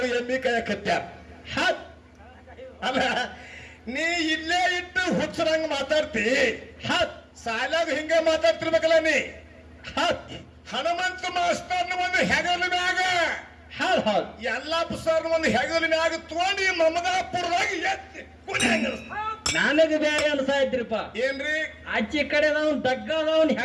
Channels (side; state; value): both; identical; correlation 1.00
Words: ME ಕೈಯಾಗ ಕಟ್ಟ್ಯಾರ. ಅಲ್ಲ, ನೀ ಇಲ್ಲೇ ಇಟ್ಟು ಹುಚ್ಚರಂಗ ಮಾತಾಡ್ತಿ. ಸಾಲಾಗ ಹಿಂಗ ಮಾತಾಡ್ತಿರ್ಬೇಕಲ್ಲ ನೀ. ಹನುಮಂತ ಮಾಸ್ತರ್ನ ಒಂದು ಹೆಗಲ ಮ್ಯಾಗ ಯಲ್ಲಪ್ಪ ಸರ್ ಒಂದು ಹೆಗಲ ಮ್ಯಾಗ ತಗೊಂಡು ಮಮದಾಪುರದಾಗ ಎತ್ತಿ ನನಗೆ ಬೇರೆ ಅನ್ಸಾಯ್ತ್ರಿಪ್ಪ. ಏನ್ರಿ? ಆಚೆ ಕಡೆ ದಗ್ಗದವನ್